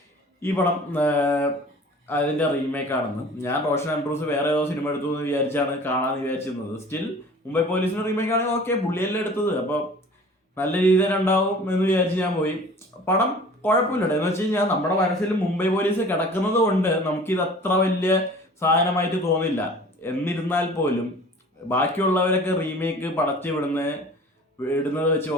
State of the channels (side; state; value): both; normal; correlation 0.45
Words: ഈ പടം അതിന്റെ റീമേക്ക് ആണെന്ന്. ഞാൻ റോഷൻ ആൻഡ്രൂസ് വേറെ ഏതോ സിനിമ എടുത്തു എന്ന് വിചാരിച്ചാണ് കാണാമെന്ന് വിചാരിച്ചിരുന്നത്. സ്റ്റിൽ മുംബൈ പോലീസിന്റെ റീമേക്ക് ആണെങ്കിൽ ഓക്കെ, പുള്ളിയല്ലേ എടുത്തത്, അപ്പോൾ നല്ല രീതിയിൽ ഉണ്ടാവും എന്ന് വിചാരിച്ച് ഞാൻ പോയി. പടം കുഴപ്പമില്ല. എന്ന് വെച്ച് കഴിഞ്ഞാൽ നമ്മുടെ മനസ്സിൽ മുംബൈ പോലീസ് കിടക്കുന്നത് കൊണ്ട് നമുക്കിത് അത്ര വലിയ സാധനമായിട്ട് തോന്നില്ല. എന്നിരുന്നാൽ പോലും ബാക്കിയുള്ളവരൊക്കെ റീമേക്ക് പടത്തി വിടുന്നത് വെച്ച്